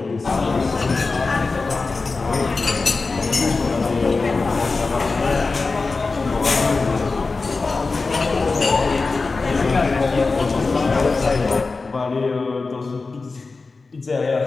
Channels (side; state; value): right; quieter; 4.0 dB